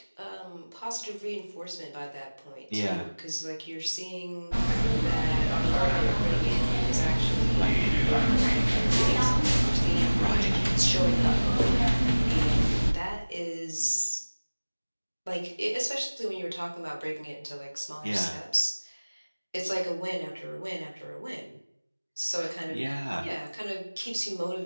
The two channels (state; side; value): inverted; both; correlation -1.00